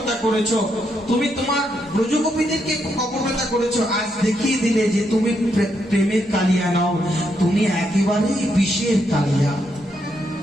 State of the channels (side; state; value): both; normal; correlation 0.79